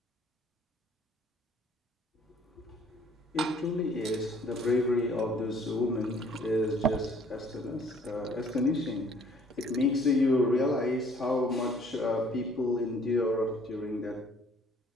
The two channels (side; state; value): both; normal; correlation 0.58